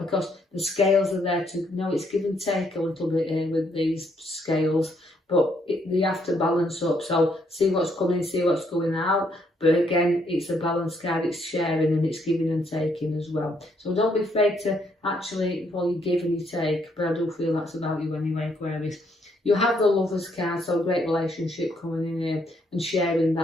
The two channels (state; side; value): normal; both; correlation 0.72